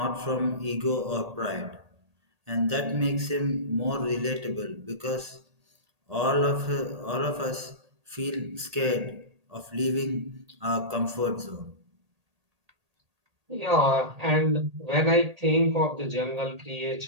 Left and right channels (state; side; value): late; left; 1.8 ms